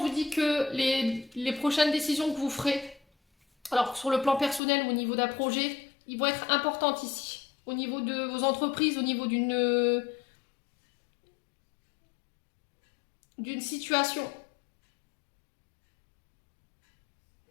dit que les prochaines décisions que vous ferez, alors sur le plan personnel ou au niveau d'un projet, ils vont être importantes ici. Au niveau de vos entreprises, au niveau d'une situation.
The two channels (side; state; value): right; drops out; at 4.6 s